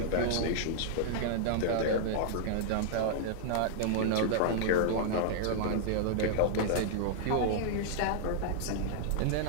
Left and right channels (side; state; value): both; different; correlation -0.01